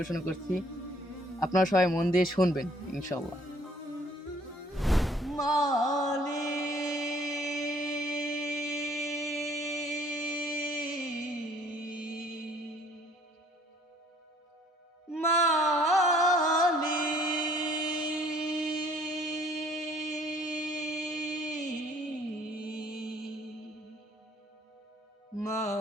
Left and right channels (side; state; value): both; normal; correlation 0.59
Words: করছি। আপনারা সবাই মন দিয়ে শুনবেন ইনশাআল্লাহ।